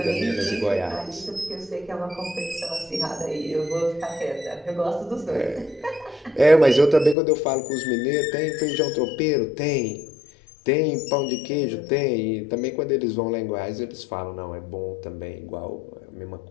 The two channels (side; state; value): right; drops out; at 7.2 s